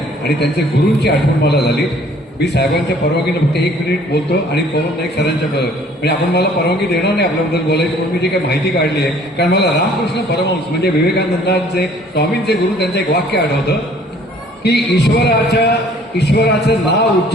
आणि त्यांचे गुरूंची आठवण मला झाली. मी साहेबांच्या परवानगीनं फक्त 1 मिनिट बोलतो आणि पवन नाईक सरांच्या म्हणजे आपण मला परवानगी देणार नाही आपल्याबद्दल बोलायची, म्हणून मी जी काही माहिती काढली आहे. कारण मला रामकृष्ण परमहंस म्हणजे विवेकानंदांचे स्वामींचे गुरु त्यांचं एक वाक्य आठवतं की ईश्वराचं नाव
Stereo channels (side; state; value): both; normal; correlation 0.56